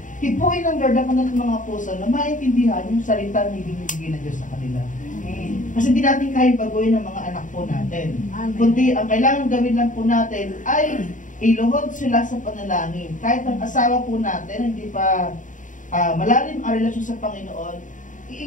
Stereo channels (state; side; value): late; right; 0.37 ms